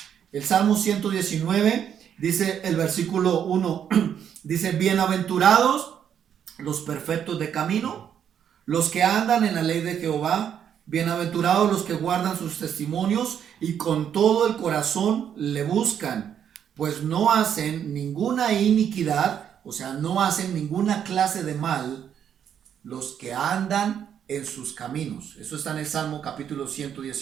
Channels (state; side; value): quieter; left; 8.8 dB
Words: El Salmo 119, Dice el versículo 1, dice, bienaventurados los perfectos de camino, los que andan en la ley de Jehová, bienaventurados los que guardan sus testimonios y con todo el corazón le buscan, pues no hacen ninguna iniquidad, o sea, no hacen ninguna clase de mal los que andan en sus caminos. Eso está en el Salmo capítulo